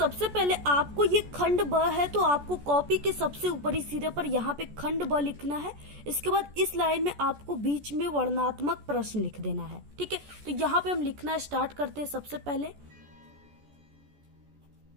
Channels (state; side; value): late; left; 14 ms